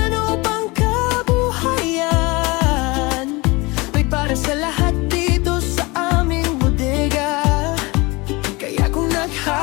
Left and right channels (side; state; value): right; quieter; 24.5 dB